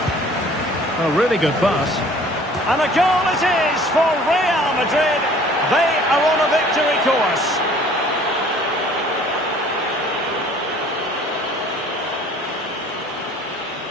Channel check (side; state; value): both; normal; correlation 0.52